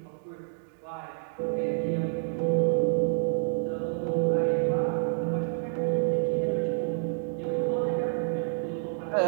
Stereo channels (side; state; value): left; silent; digital silence